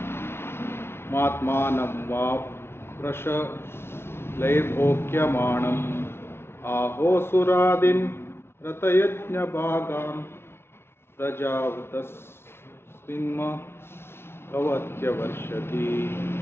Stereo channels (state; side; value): late; right; 0.12 ms